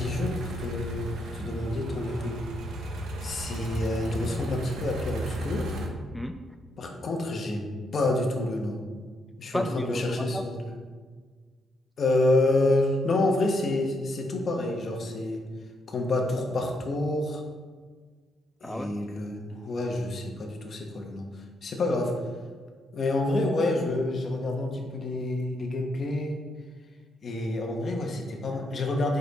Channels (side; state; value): both; normal; correlation 0.78